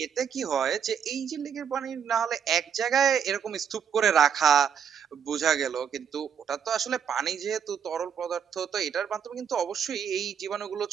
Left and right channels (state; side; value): quieter; left; 7.8 dB